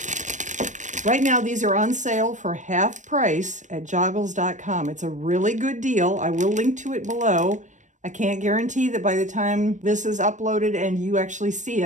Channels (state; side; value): late; left; 0.35 ms